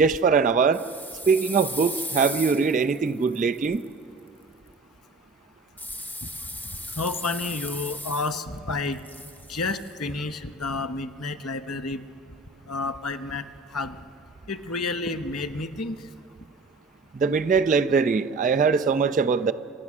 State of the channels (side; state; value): left; quieter; 3.4 dB